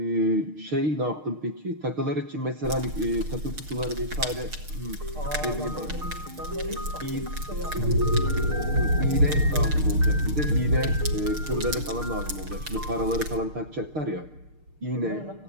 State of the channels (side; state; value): left; late; 6.5 ms